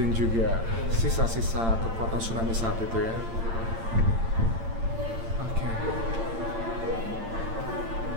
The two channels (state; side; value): late; left; 8.8 ms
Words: juga sisa-sisa kekuatan tsunami saat itu ya. Oke.